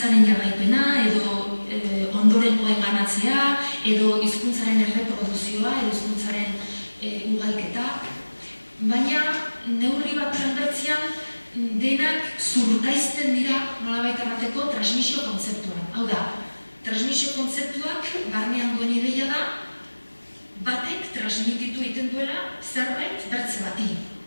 jarraipena, edo ondorengoen banatzea, edo hizkuntzaren erreproduzioa, edo hizkuntzaren ugalketa. Baina, neurri bat bertzean, denak zurkaizten dira nolabait errateko transmisio kontzeptuan. Hau da, transmisio kontzeptuak barnean duen ideia da, batek transmititu egiten duela zerbait bertze bati.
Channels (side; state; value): both; inverted; correlation -1.00